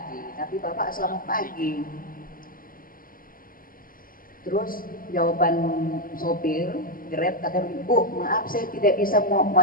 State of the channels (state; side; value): late; right; 0.41 ms